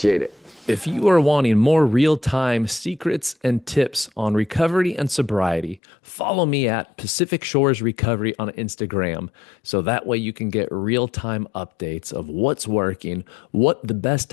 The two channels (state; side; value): drops out; right; at 5.8 s